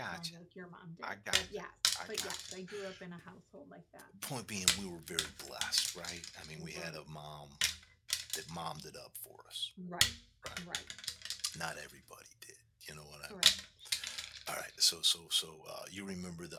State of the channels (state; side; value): identical; both; correlation 1.00